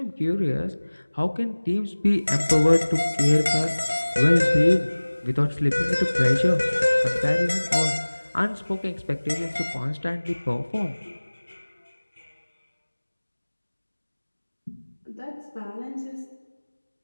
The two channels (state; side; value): inverted; both; correlation -1.00